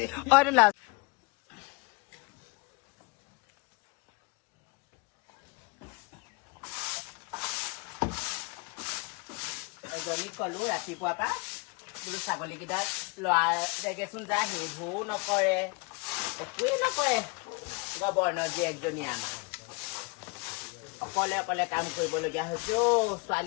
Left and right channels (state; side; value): quieter; right; 28.9 dB